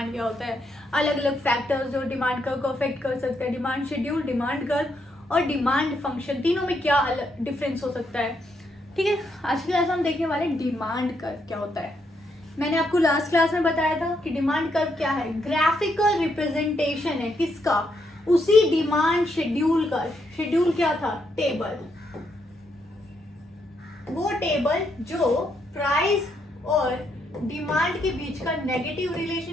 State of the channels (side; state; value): both; normal; correlation 0.77